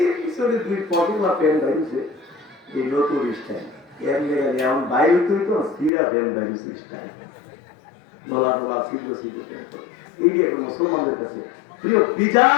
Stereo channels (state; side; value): drops out; right; at 5.9 s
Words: পিছনে 2 পকেট বা প্যান্ট বাইরেছে এই নতুন স্টাইল, এর লেগে এমন বাইরে তুই তো সিরা প্যান্ট বাইরেছে স্টাইল, নোলা নোলা সিদ্ধ সিদ্ধ প্যান্ট। এই যে এখন মুসলমানদের কাছে প্রিয়